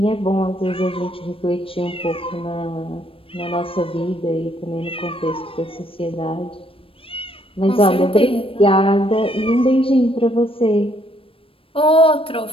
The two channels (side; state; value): right; late; 0.26 ms